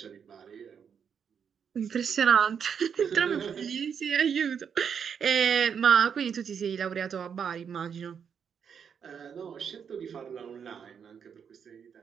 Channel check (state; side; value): quieter; left; 7.3 dB